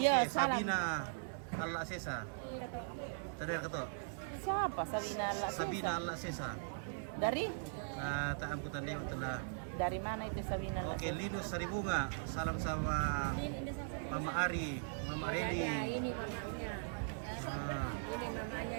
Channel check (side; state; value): left; silent; digital silence